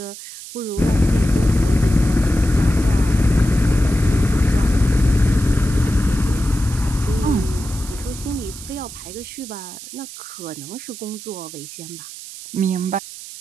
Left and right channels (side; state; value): right; noise; hiss, 13 dB below the sound